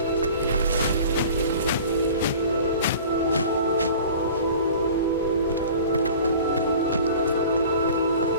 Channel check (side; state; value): both; inverted; correlation -0.42